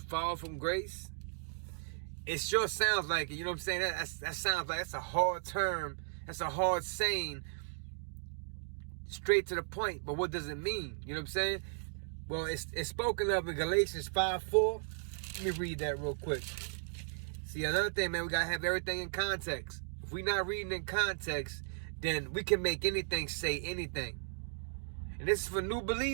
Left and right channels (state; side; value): silent; left; digital silence